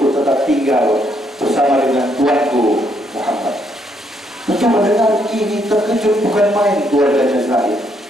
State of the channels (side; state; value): both; normal; correlation 0.73